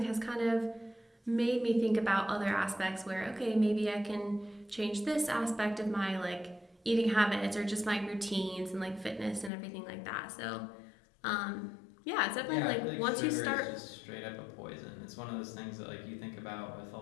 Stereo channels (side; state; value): right; drops out; at 9.5 s